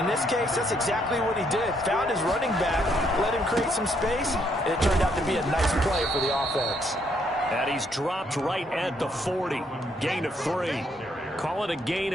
this case, that's exactly what he did. Found his running back, let him create some space, and it turned out to be a nice play for the offense. And he's dropped right at the 40. Gain of 3. Call it a gain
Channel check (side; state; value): both; normal; correlation 0.71